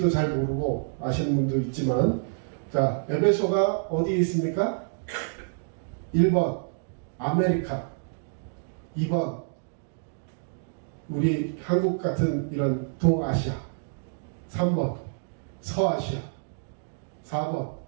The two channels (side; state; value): left; silent; digital silence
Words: 잘 모르고 아시는 분도 있지만 자, 에베소가 어디에 있습니까? 1번 아메리카, 2번 우리 한국 같은 이런 동아시아, 3번 서아시아, 4번